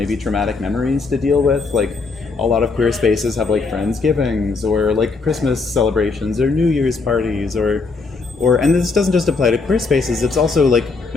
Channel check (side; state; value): right; quieter; 4.1 dB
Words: traumatic memories to deal with. Like, a lot of queer spaces have, like, Friendsgivings or, like, Christmas celebrations or New Year's parties or and this doesn't just apply to queer spaces, it's also, like,